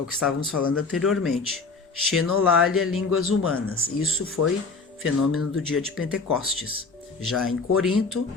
que estávamos falando anteriormente. Xenolalia, línguas humanas. Isso foi fenômeno do dia de Pentecostes. Já em Corinto,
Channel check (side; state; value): right; quieter; 4.2 dB